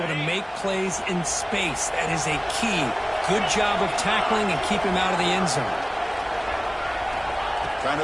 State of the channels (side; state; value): both; identical; correlation 1.00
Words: to make plays in space. That is a key. Good job of tackling and keep him out of the end zone. Trying